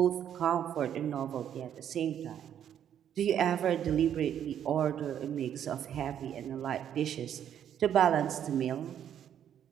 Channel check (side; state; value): left; quieter; 9.7 dB